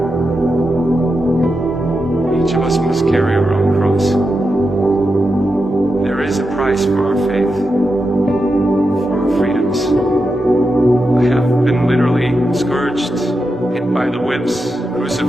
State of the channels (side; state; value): both; normal; correlation 0.88